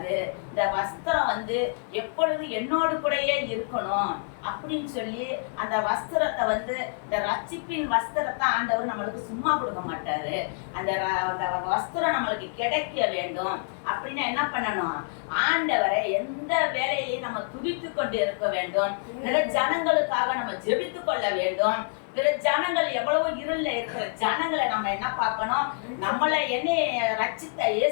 இந்த வஸ்திரம் வந்து எப்பொழுது என்னோடு கூடயே இருக்கணும் அப்படின்னு சொல்லி அந்த வஸ்திரத்தை வந்து, இந்த ரட்சிப்பின் வஸ்திரத்தை ஆண்டவர் நம்மளுக்கு சும்மா கொடுக்க மாட்டாரு. அந்த வஸ்திரம் நம்மளுக்கு கிடைக்க வேண்டும் அப்படின்னா என்ன பண்ணணும், ஆண்டவரை எந்த வேலையிலையும் நம்ம துதித்து கொண்டு இருக்க வேண்டும். பிற ஜனங்களுக்காக நம்ம ஜெபித்து கொள்ள வேண்டும். பிற ஜனங்கள் எவ்வளவோ இருள்ல இருக்கிற ஜனங்களை நம்ம என்ன பார்க்கணும், நம்மளை என்னை ரட்சித்த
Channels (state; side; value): silent; right; 60 dB below the other